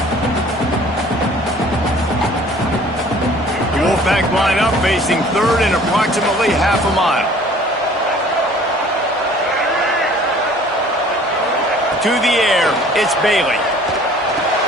line up facing third in approximately half a mile. To the air, it's Bailey.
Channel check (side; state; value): both; normal; correlation 0.51